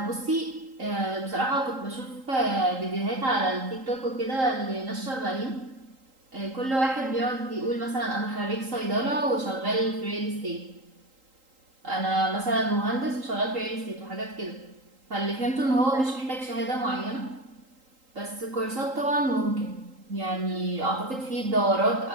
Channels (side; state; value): left; late; 3.8 ms